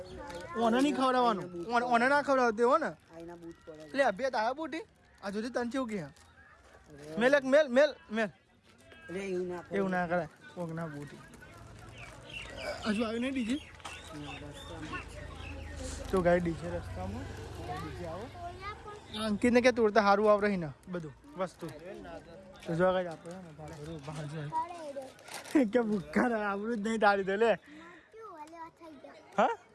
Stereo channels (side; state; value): both; identical; correlation 1.00